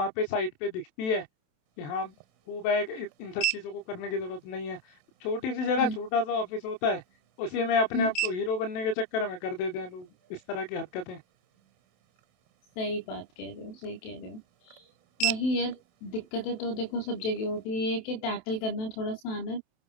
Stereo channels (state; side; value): late; right; 27 ms